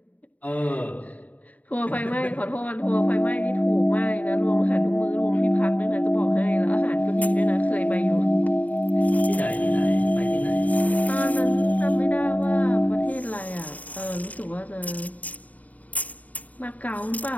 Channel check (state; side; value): late; right; 0.072 ms